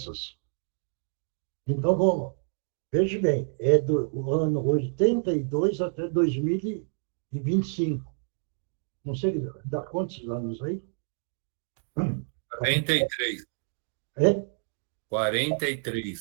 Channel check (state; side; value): silent; left; digital silence